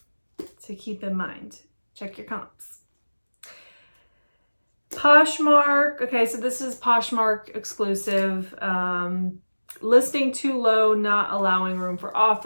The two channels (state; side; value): inverted; both; correlation -1.00